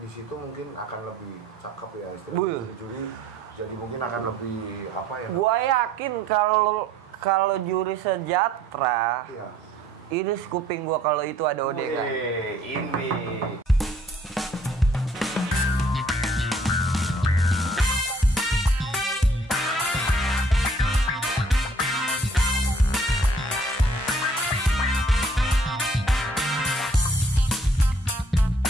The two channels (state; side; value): normal; both; correlation 0.60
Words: situ mungkin akan lebih cakep ya istilahnya juri. Jadi mungkin akan lebih apa ya? Gua yakin kalau juri sejahtera, Iya. ini kuping gua kalau itu ada ODK. Ini.